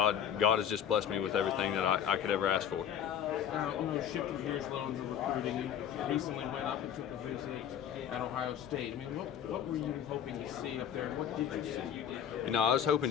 has just blessed me with everything that I could ever ask for. Now, shifting gears a little into recruiting, you recently went up and took a visit at Ohio State. I mean, what were you hoping to see up there, and what did you see? I was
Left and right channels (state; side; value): quieter; right; 9.2 dB